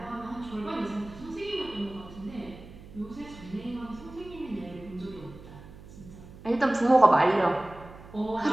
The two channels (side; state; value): right; noise; hum, 18 dB below the sound